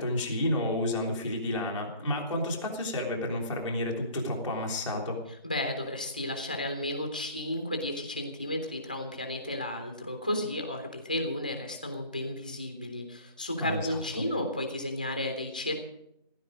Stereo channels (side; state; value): both; inverted; correlation -0.46